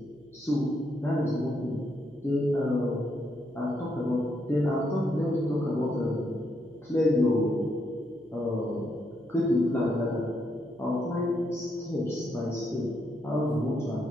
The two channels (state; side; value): noise; right; hum, 30 dB below the sound